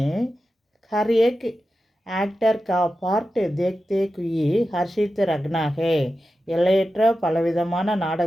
हर एक एक्टर का पार्ट देखते हुए हर्षित रखना है. எல்லையற்ற பலவிதமான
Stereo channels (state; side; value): normal; both; correlation 0.92